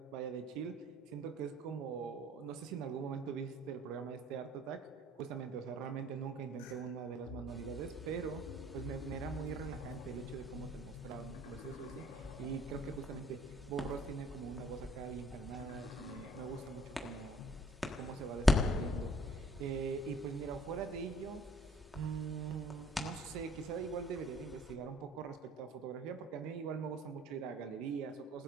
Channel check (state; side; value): normal; both; correlation 0.57